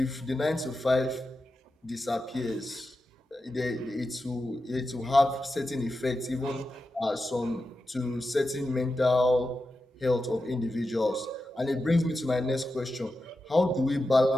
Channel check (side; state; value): both; normal; correlation 0.90